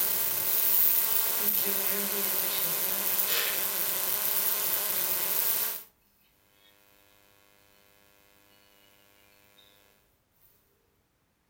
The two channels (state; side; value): identical; both; correlation 1.00